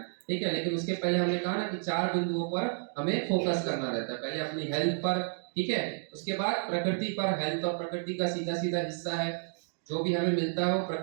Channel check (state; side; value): silent; left; digital silence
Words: ठीक है। लेकिन उसके पहले हमने कहा ना कि 4 बिंदुओं पर हमें फोकस करना रहता है। पहले अपनी हेल्थ पर, ठीक है, उसके बाद प्रकृति पर। हेल्थ और प्रकृति का सीधा सीधा हिस्सा है, जो भी हमें मिलता है वो